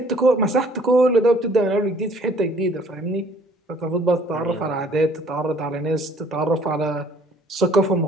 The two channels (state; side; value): normal; both; correlation 0.57